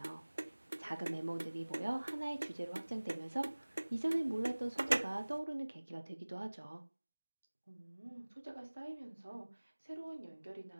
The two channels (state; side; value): inverted; both; correlation -1.00